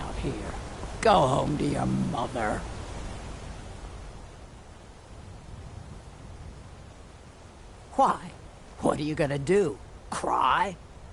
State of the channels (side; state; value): both; identical; correlation 1.00